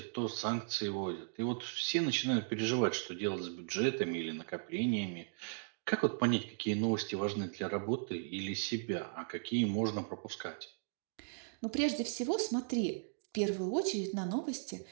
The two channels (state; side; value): silent; left; digital silence